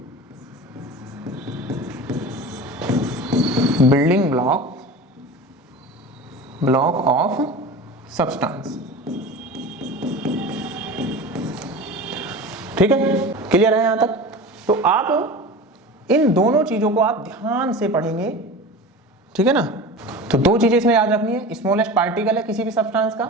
ब्लॉक ऑफ सब्सटेंस। ठीक है, क्लियर है यहां तक? तो आप इन दोनों चीजों को आप ध्यान से पढ़ेंगे, ठीक है ना। तो दो चीजें इसमें याद रखनी है, स्मॉलेस्ट पार्टिकल है किसी भी सब्सटेंस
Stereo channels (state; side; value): normal; both; correlation 0.33